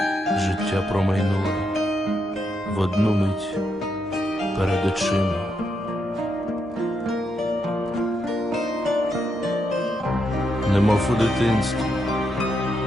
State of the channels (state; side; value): normal; both; correlation 0.81